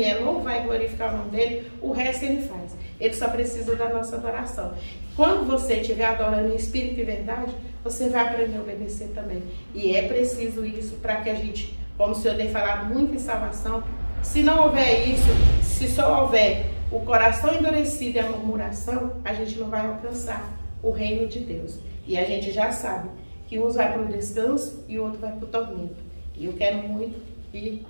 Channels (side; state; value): both; inverted; correlation -1.00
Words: não vai glorificar o nome dEle, o resto Ele faz. Ele só precisa da nossa adoração. Quando você estiver adorando em espírito e verdade, você vai aprender a obedecer também. E é preciso isso para que a gente, como o Senhor tem falado muito em salvação, se não houver isso, se só houver o coração endurecido e a murmuração, a gente não vai alcançar o reino de Deus. E a gente já sabe que uns vai para o descanso e o outro vai para o tormento. E eu quero muito que,